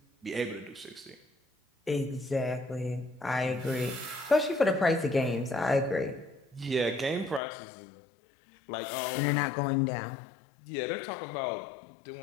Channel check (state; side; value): drops out; right; at 7.4 s